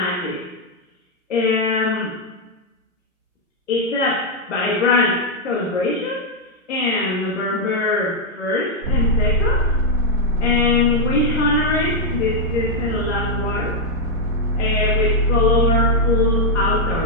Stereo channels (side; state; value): both; normal; correlation -0.01